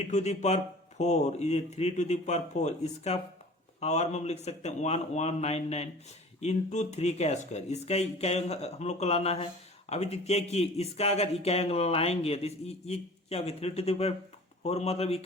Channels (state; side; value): normal; both; correlation 0.43